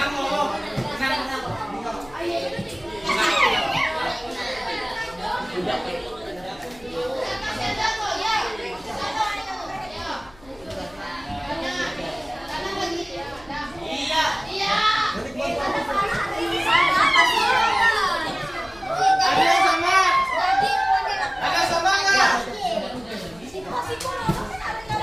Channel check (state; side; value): noise; left; hum, 25 dB below the sound